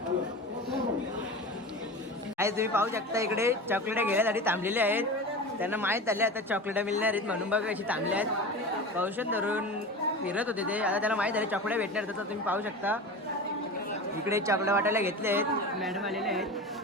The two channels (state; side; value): normal; both; correlation 0.29